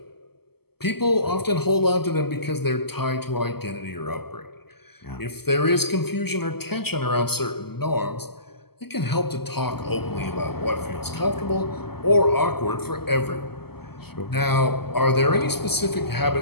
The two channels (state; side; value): late; right; 0.96 ms